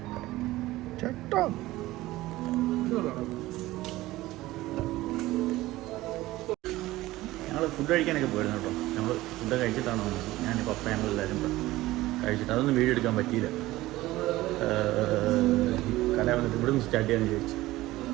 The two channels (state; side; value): quieter; left; 17.5 dB